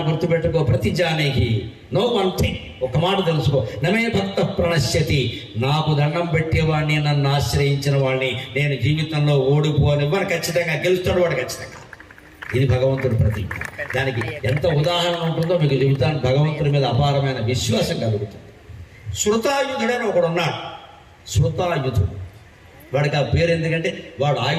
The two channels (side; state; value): both; identical; correlation 1.00